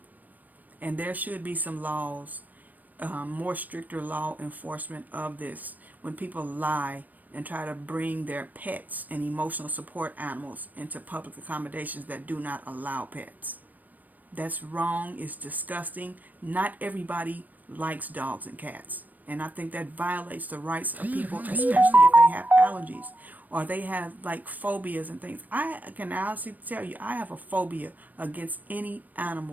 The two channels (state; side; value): late; left; 0.084 ms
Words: And there should be some laws, more stricter law enforcement of this, when people lie and try to bring their pets and emotional support animals into public accommodations that do not allow pets. That's wrong. It's disgusting. Not everybody likes dogs and cats. And I think that violates the rights of people, especially if they have allergies or they have like phobias and things. I can honestly tell you, I have a phobia against any